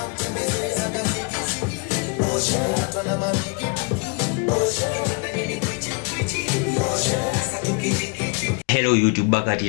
YouTube, back at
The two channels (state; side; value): quieter; right; 32.5 dB